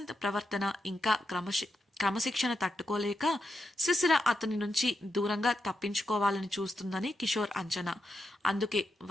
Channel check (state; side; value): normal; both; correlation 0.85